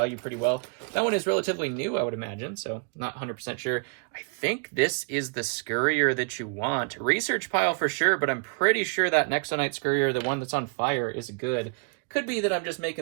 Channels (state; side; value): quieter; left; 36.3 dB